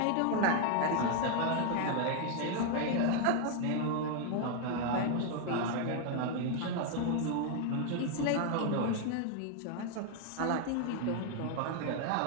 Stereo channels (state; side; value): different; both; correlation 0.00